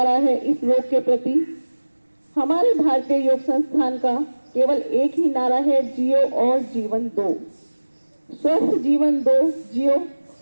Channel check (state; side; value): inverted; both; correlation -1.00